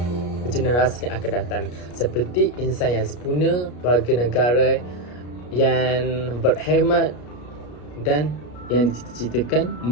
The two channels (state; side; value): late; right; 33 ms